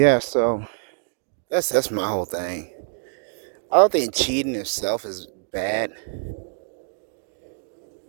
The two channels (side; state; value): left; silent; digital silence